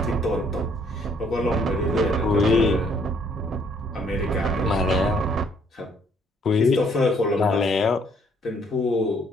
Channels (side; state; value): both; normal; correlation 0.65